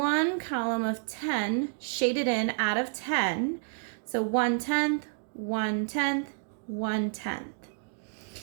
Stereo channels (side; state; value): left; silent; digital silence